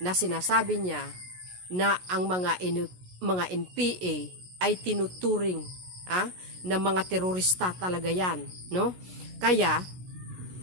na sinasabi niya na ang mga NPA ay tinuturing na mga terorista talaga yan, no? Kaya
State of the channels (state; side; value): late; left; 16 ms